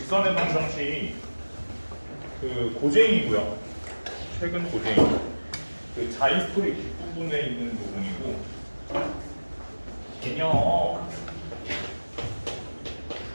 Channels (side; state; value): both; inverted; correlation -1.00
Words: 방정식 그 고쟁이고요. 최근 고쟁이. 그 자이스토리 뒷부분에 있는 부분이고 개념.